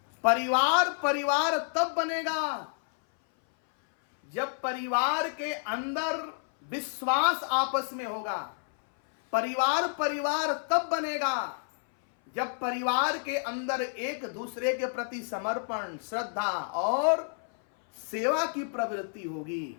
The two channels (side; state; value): right; silent; 58 dB below the other